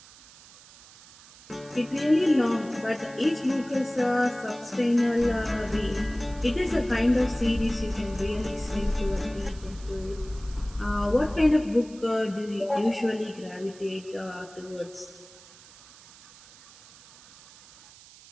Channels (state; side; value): noise; right; hiss, 22 dB below the sound